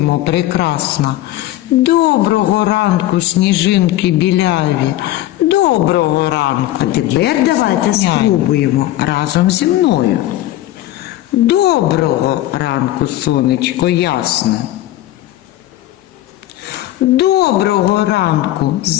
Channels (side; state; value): right; quieter; 14.8 dB